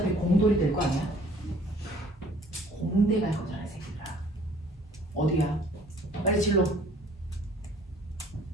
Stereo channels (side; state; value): both; normal; correlation 0.55